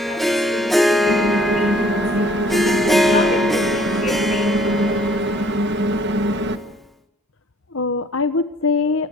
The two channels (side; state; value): both; normal; correlation 0.58